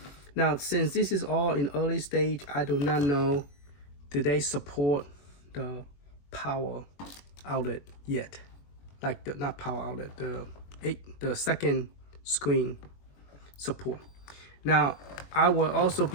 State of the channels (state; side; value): late; right; 21 ms